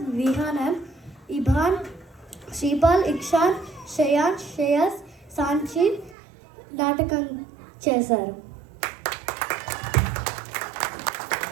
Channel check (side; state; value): left; drops out; at 6.2 s